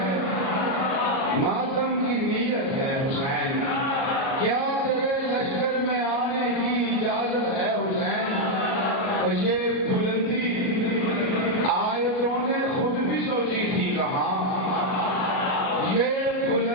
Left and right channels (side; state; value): right; late; 37 ms